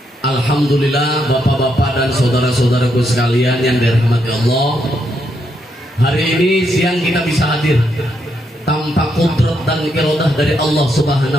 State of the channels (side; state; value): both; normal; correlation 0.78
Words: Alhamdulillah bapak-bapak dan saudara-saudaraku sekalian yang dirahmati Allah, hari ini siang kita bisa hadir tanpa kudrat dan iradah dari Allah